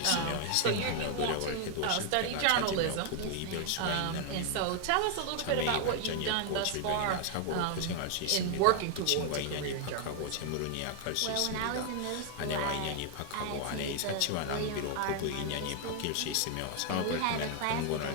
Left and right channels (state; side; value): different; both; correlation 0.00